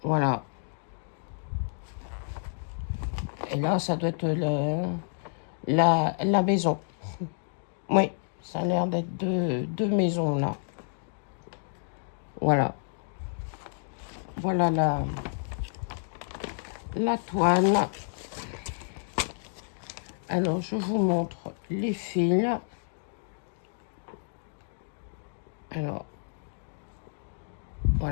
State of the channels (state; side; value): silent; right; digital silence